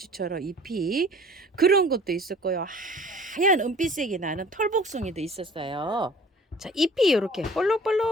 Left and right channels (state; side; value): normal; both; correlation 0.49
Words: 잎이 그런 것도 있었고요. 하얀 은빛색이 나는 털복숭이도 있었어요. 자, 잎이 이렇게